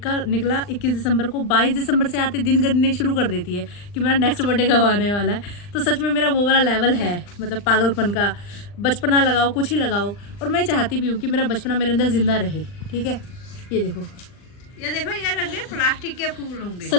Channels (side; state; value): right; late; 39 ms